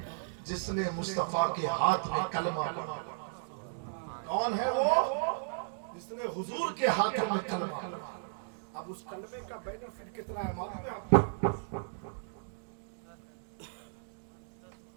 جس نے مصطفیٰ کے ہاتھ میں کلمہ پڑھا؟ کون ہے وہ جس نے حضور کے ہاتھ میں کلمہ پڑھا؟ اب اس کلمے کا بینیفٹ کتنا ہے معلوم ہے آپ کو؟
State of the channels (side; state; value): left; silent; digital silence